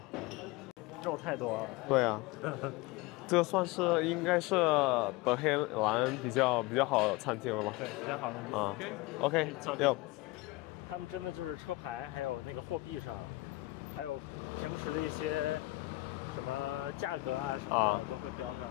肉太多了。对啊，这算是应该是德黑兰比较好的餐厅了吧？对，比较好的。啊 ，OK， 要。他们真的就是车牌，还有那个货币上，还有平时的一些什么价格啊什么的，都会标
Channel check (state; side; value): quieter; right; 20.5 dB